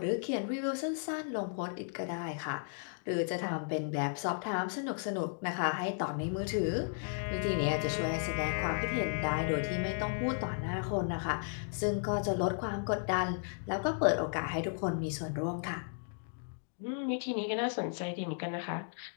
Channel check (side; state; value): right; silent; digital silence